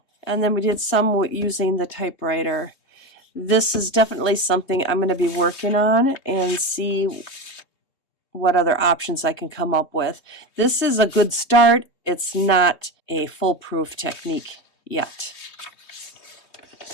And then we did some using the typewriter. This is definitely something I'm going to be working on and see what other options I can come up with. This is a good start. It's not a foolproof technique yet.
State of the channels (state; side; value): late; right; 3.2 ms